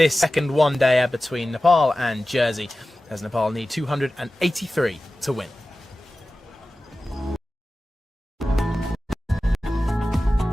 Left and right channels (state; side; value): normal; both; correlation 0.95